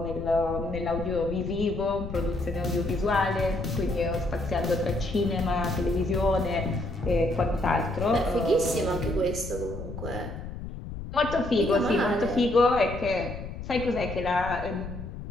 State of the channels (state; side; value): noise; left; rumble, 9 dB below the sound